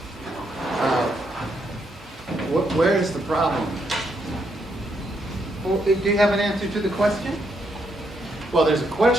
Where is the problem? Well, do you have an answer to the question? Well, there's a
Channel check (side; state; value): both; normal; correlation 0.77